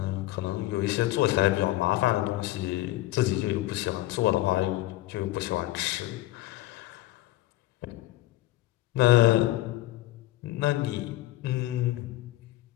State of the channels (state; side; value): quieter; right; 16.5 dB